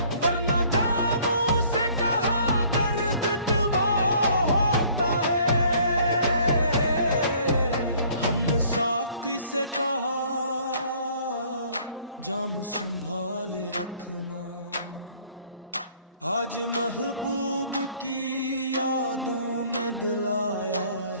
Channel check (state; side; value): inverted; both; correlation -0.57